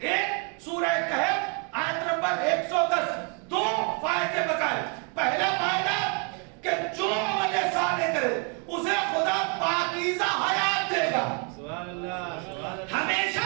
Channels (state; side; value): quieter; left; 37.2 dB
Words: سورہ کہف آیت نمبر 110، دو فائدے بتائے۔ پہلا فائدہ کہ جو عمل صالح کرے اسے خدا پاکیزہ حیات دے گا، ہمیشہ